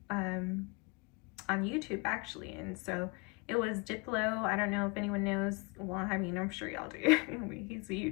YouTube actually, and so it was Diplo. I don't know if anyone knows. Well, I mean, I'm sure y'all do. He's a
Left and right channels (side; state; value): right; quieter; 29.6 dB